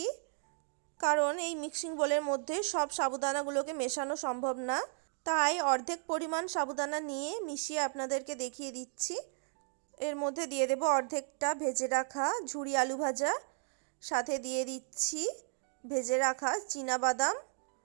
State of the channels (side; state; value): left; silent; 55 dB below the other